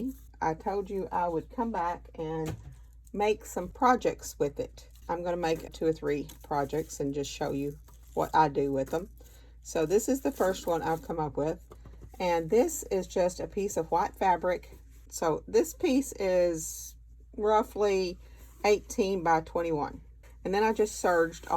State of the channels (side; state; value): both; identical; correlation 1.00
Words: I told you I would come back and make some projects with it. I'm going to make 2 or 3 projects and just show you what I do with them. So this is the first one I've come up with, and this is just a piece of white fabric. So this piece is roughly 18 by 21, and then I just serged